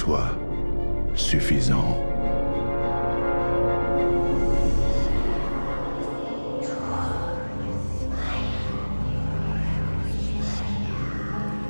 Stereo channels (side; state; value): both; inverted; correlation -1.00